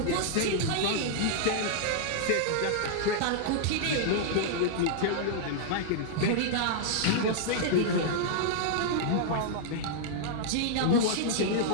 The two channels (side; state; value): both; different; correlation -0.01